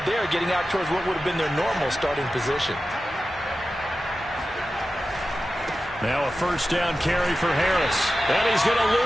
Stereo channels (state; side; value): normal; both; correlation 0.93